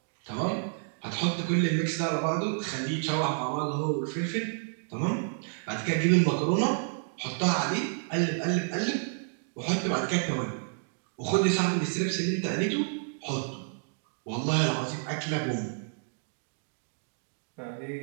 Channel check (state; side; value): silent; left; digital silence